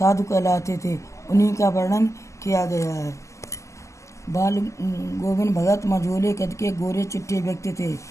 कहलाते थे। उन्हीं का वर्णन किया गया है। बाल गोविंद भगत मझोले कद के गोरे चिट्टे व्यक्ति थे।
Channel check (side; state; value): right; late; 0.15 ms